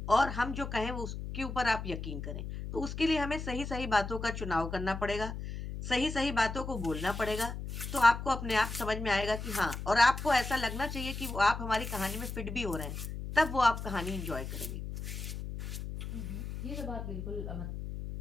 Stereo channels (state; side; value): noise; left; hum, 7 dB below the sound